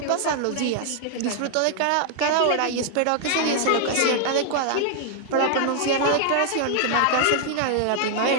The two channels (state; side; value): different; both; correlation 0.00